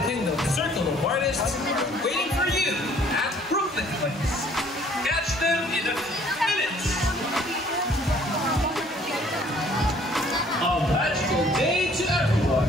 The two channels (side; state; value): both; normal; correlation 0.58